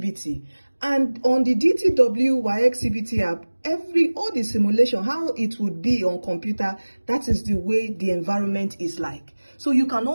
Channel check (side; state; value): both; inverted; correlation -1.00